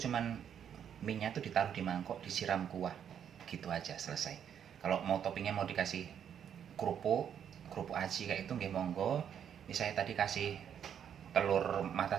cuman minyak tuh ditaruh di mangkok, disiram kuah gitu aja, selesai. Kalau mau toppingnya mau dikasih kerupuk aci kayak itu nggih monggo. Ini saya tadi kasih telur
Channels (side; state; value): left; quieter; 8.7 dB